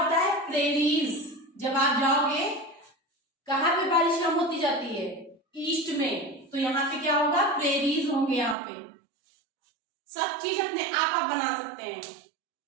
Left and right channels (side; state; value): left; drops out; at 8.6 s